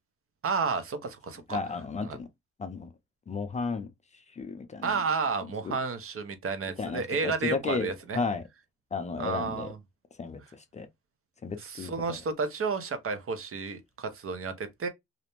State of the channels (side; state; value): both; normal; correlation 0.08